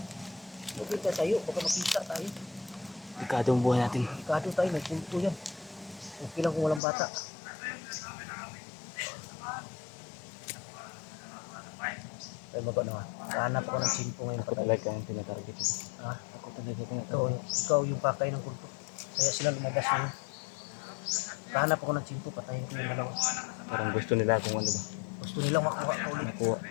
Magkita tayo, baka makita tayo. Delikado ang buhay natin. Ikado tayo, may kulto yan. Okay lang kung walang bata. Ay, mago na nga. Hanap ako ng simpo ngayon. Ako talaga ang tinatarget ko. Ha? Ako talaga Ikaw yung pakay ng kulto. Kaya sila lumabas ngayon. Hanap ako ng simpo, patayin ko yung dalawa. Parang gusto nila kung ano ba. Gusto nilang makuha ka ulit. Nakuha.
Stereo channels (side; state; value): right; drops out; at 6.8 s